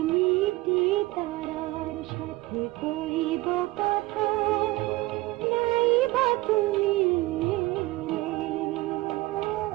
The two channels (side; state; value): left; quieter; 19.9 dB